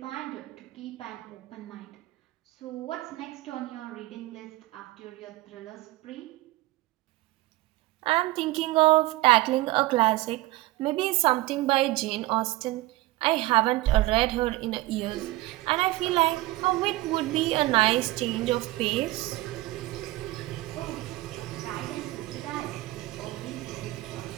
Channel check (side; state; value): left; quieter; 18.7 dB